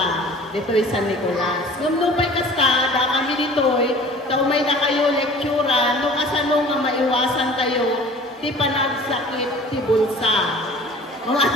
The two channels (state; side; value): normal; both; correlation 0.46